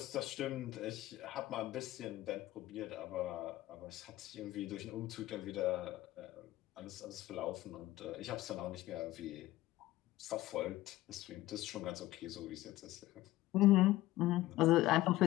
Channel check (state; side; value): quieter; right; 16.5 dB